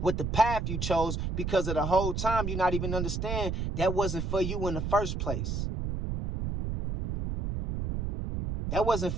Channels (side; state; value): right; noise; rumble, 2 dB below the sound